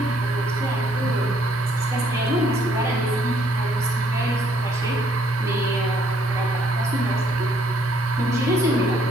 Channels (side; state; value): both; normal; correlation 0.67